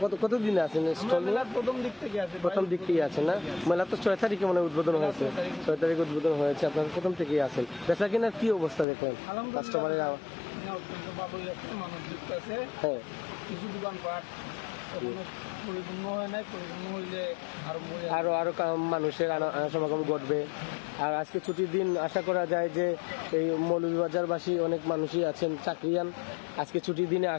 কতদিন আছেন স্টল নিয়ে? প্রথম দিক থেকে আছেন না? মেলা তো 6 তারিখে মনে উদ্বোধন হয়েছে, 6 তারিখে উদ্বোধন হয়েছে, আপনারা প্রথম থেকেই আছেন। বেচা কেনার কি অবস্থা দেখলেন কাস্টমারের? হ্যাঁ, কিছু দোকানপাট পরিপূর্ণ হয় নাই, পরিপূর্ণ হইলে আরো মানুষের সমাগম ঘটবে। আর আজকে ছুটির দিন, আশা করা যায় যে এই মৌলভীবাজারবাসী অনেক মানুষই আছেন চাকরিয়ান, আজকে ছুটির দিনে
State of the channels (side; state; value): right; drops out; at 8.8 s